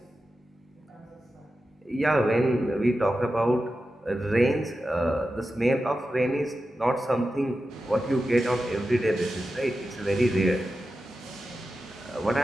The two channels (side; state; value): both; normal; correlation 0.92